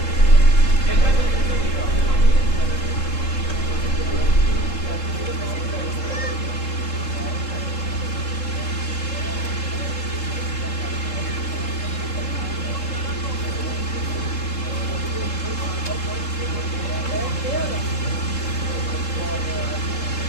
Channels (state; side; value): late; right; 3.7 ms